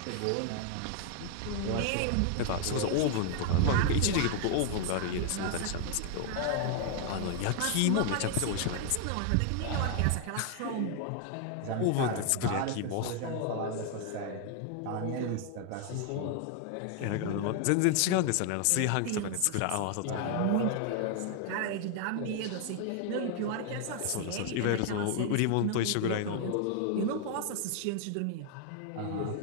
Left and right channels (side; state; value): both; different; correlation 0.00